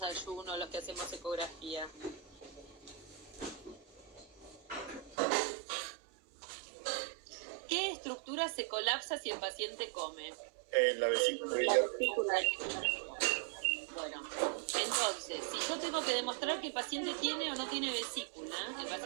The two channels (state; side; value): drops out; left; at 5.2 s